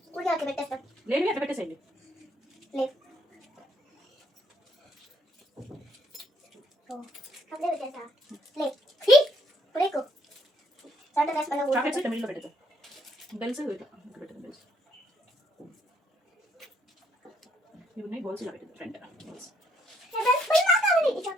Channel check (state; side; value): normal; both; correlation 0.69